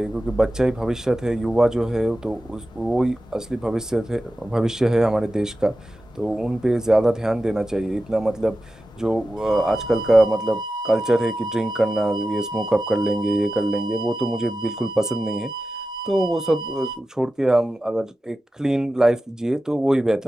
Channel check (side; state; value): both; normal; correlation 0.93